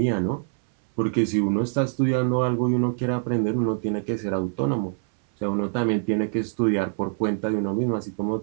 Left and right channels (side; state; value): left; silent; 62 dB below the other